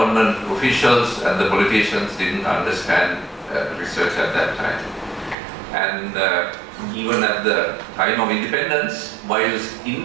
officials and the politicians didn't understand research at that time. And even at the time of independence, whilst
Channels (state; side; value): drops out; left; at 5.4 s